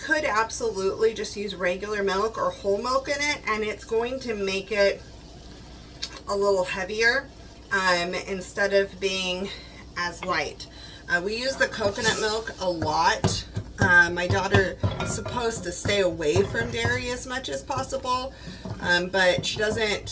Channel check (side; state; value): both; identical; correlation 1.00